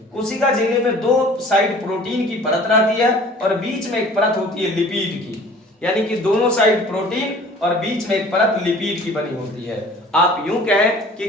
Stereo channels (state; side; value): normal; both; correlation 0.48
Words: कोशिका झिल्ली में दो साइड प्रोटीन की परत रहती है और बीच में एक परत होती है लिपिड की, यानी कि दोनों साइड प्रोटीन और बीच में एक परत लिपिड की बनी होती है। आप यूं कहें कि